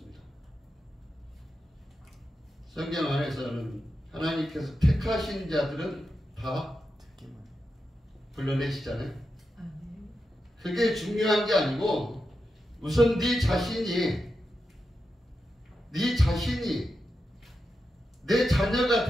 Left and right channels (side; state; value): both; normal; correlation 0.89